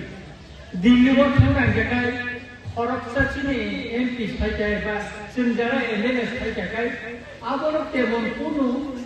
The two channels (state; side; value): identical; both; correlation 1.00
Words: Dili waktu orang jagai, orang sini MP sahaja bas, senjata MNS sahaja kai. Abolok tebon kuno,